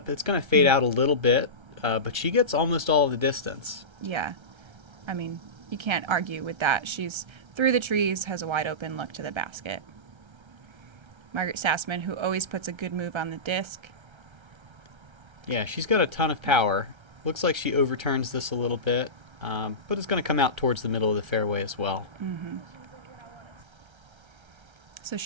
It's going to fade out a little bit, but she gets almost all of the distance. Yeah. I mean, you can't argue with that. She's through the trees, has a wide open look to the basket. Margaret Sassaman, who always puts a good move on the disc. Yeah, she's got a ton of power. Looks like she overturns this a little bit, but it's going to come out towards the middle of the fairway as well. So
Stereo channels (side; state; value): left; late; 1.3 ms